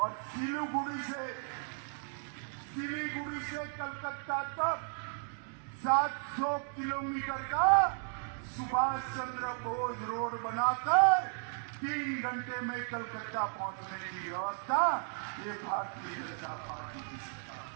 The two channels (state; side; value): silent; left; 55 dB below the other